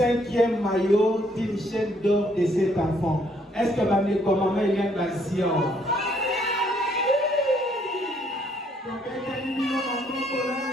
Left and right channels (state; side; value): normal; both; correlation 0.68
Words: maillot d'une chaîne d'or de cet enfant. Est-ce que ma mère, comme maman, il y a une passion?